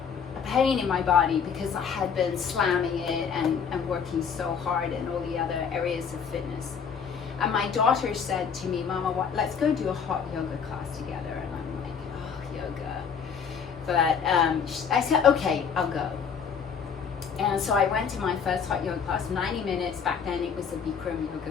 a pain in my body, because I had been slamming it and working so hard in all the other areas of fitness. And my daughter said to me, Mama, let's go do a hot yoga class together. And I'm like, oh, yoga. But I said, okay, I'll go. And so I went to my first hot yoga class, 90 minutes. Back then it was a Bikram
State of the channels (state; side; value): quieter; right; 6.7 dB